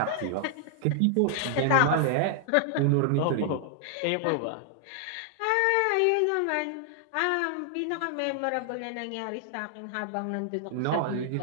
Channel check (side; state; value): both; different; correlation 0.00